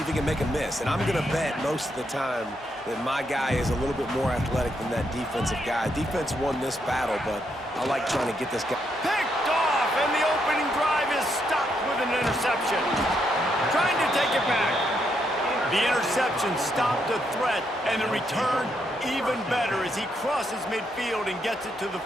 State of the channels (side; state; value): both; normal; correlation 0.78